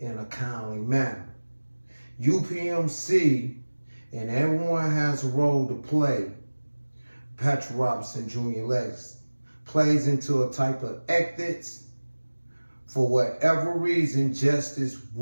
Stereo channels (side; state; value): both; inverted; correlation -1.00